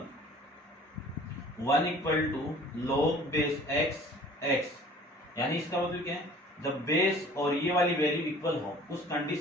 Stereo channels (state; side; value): normal; both; correlation 0.49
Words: 1 equal to log base x, यानी इसका मतलब क्या है, जब बेस और ये वाली वैल्यू इक्वल हो उस